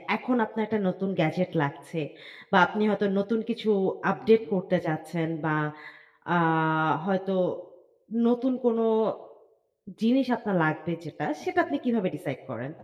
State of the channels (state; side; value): identical; both; correlation 1.00